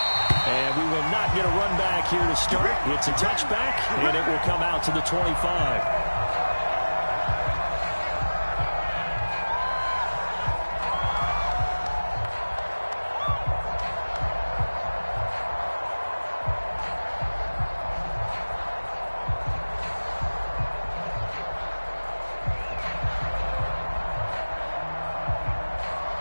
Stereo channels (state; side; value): inverted; both; correlation -1.00